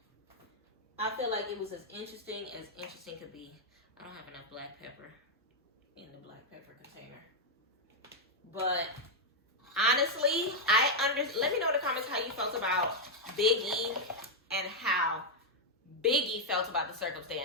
I feel like it was as interesting could be. I don't have enough black pepper in the black pepper container. But honestly, let me know in the comments how you felt about Biggie and how Biggie felt about the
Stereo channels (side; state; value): both; normal; correlation -0.02